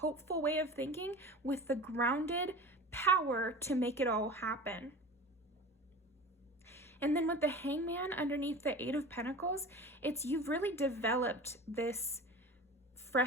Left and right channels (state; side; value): normal; both; correlation 0.36